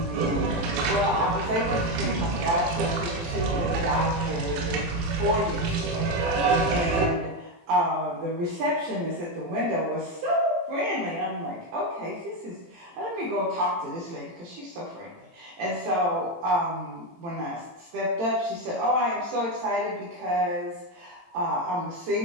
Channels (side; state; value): left; late; 18 ms